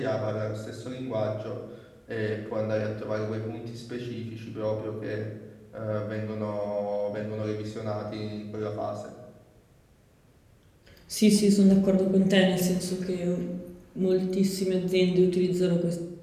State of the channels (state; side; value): identical; both; correlation 1.00